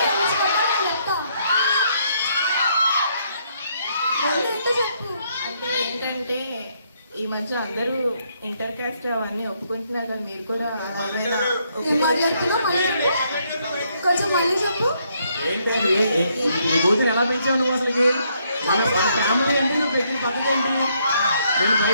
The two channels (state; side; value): inverted; both; correlation -0.72